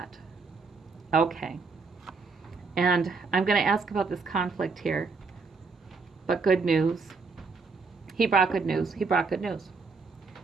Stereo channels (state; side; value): quieter; left; 4.5 dB